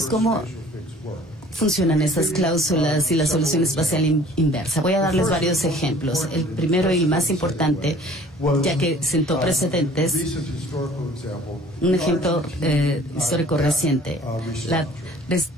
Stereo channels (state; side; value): normal; both; correlation 0.51